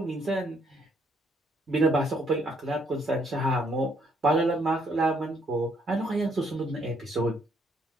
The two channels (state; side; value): normal; both; correlation 0.69